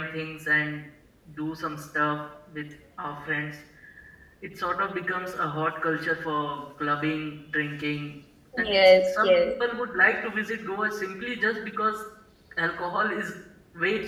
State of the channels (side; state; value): both; identical; correlation 1.00